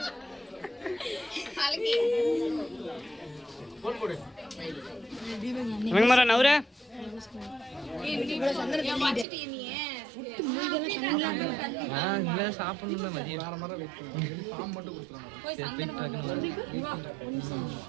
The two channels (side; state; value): left; drops out; at 9.2 s